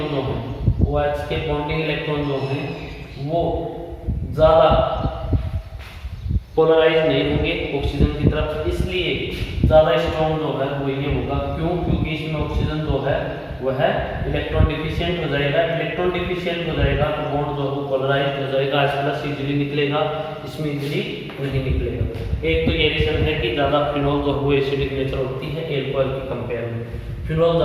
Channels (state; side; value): identical; both; correlation 1.00